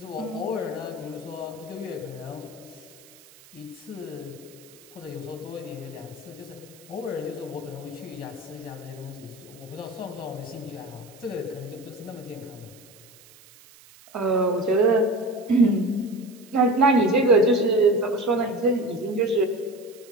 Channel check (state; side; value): noise; right; hiss, 23 dB below the sound